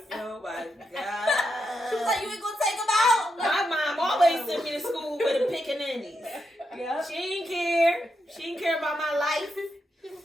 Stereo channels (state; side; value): normal; both; correlation 0.83